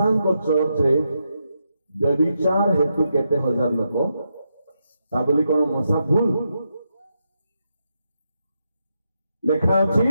ଚର୍ଚ୍ଚରେ ବ୍ୟଭିଚାର ହେତୁ କେତେ ହଜାର ଲୋକ, ତା ବୋଲି କଣ ମଶା ଭୁଲ? ଲେଖା ଅଛି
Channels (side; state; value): both; inverted; correlation -0.84